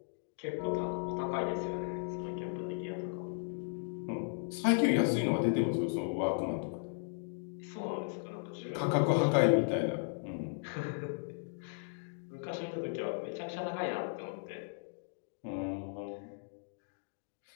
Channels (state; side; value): silent; right; digital silence